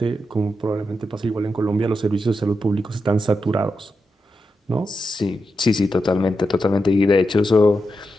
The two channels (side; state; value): both; normal; correlation 0.87